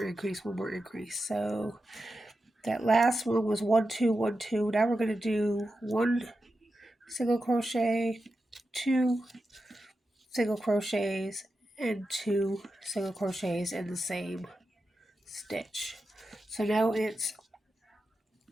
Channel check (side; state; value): both; normal; correlation 0.90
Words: increase, one more increase. So that last one was 1, 2, 1, 2. Now we're going to do 1 single crochet, 2 single crochets, and 2 single crochets in the same stitch. So now it's